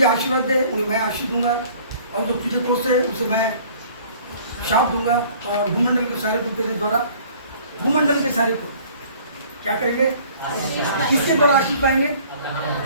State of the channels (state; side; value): inverted; both; correlation -0.53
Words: आशीर्वाद दे उन्हें मैं आशीष दूंगा और जो तुझे कोसे उसे मैं शाप दूंगा, और भूमंडल के सारे को तेरे द्वारा, भूमंडल के सारे को क्या करेंगे, किसके द्वारा आशीष पाएंगे,